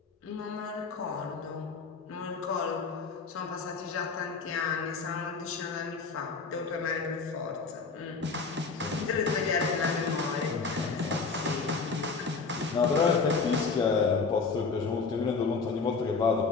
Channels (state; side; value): quieter; right; 4.8 dB